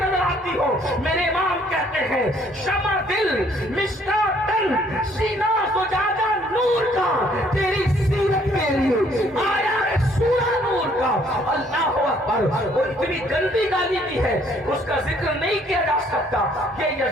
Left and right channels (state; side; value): normal; both; correlation 0.63